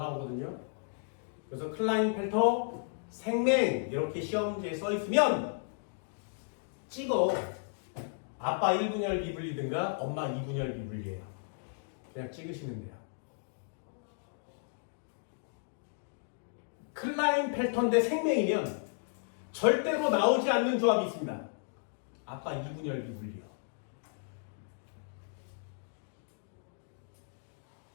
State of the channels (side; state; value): right; silent; digital silence